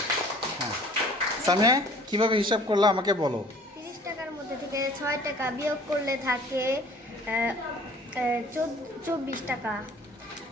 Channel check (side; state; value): both; normal; correlation 0.51